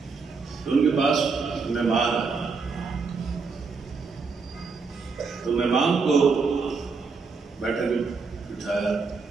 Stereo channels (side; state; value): left; quieter; 4.8 dB